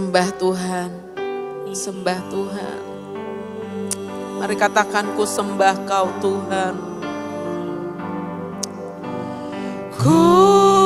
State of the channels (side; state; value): both; identical; correlation 1.00